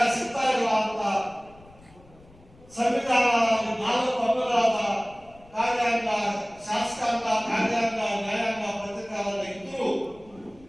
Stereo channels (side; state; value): left; noise; rumble, 25 dB below the sound